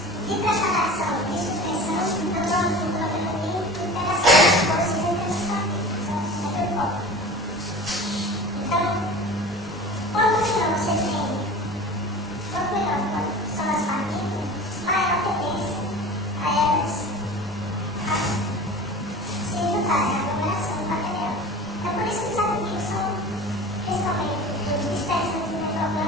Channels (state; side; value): normal; both; correlation 0.37